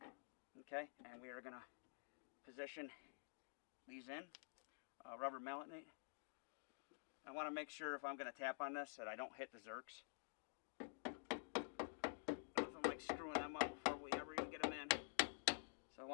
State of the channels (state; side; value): silent; right; digital silence